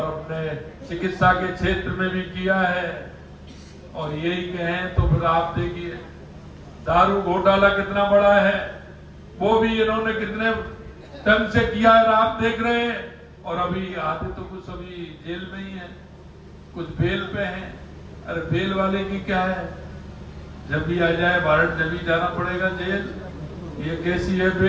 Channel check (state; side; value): identical; both; correlation 1.00